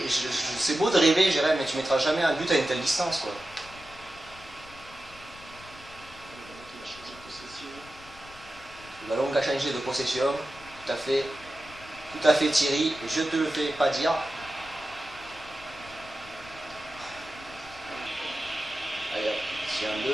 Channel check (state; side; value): noise; left; rumble, 20 dB below the sound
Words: c'est beau de rêver, Jérém, mais tu mettras jamais un but à une telle distance, quoi. Le ballon qui a changé de possession, tout à fait Thierry, je te le fais pas dire. Allez hop, ici un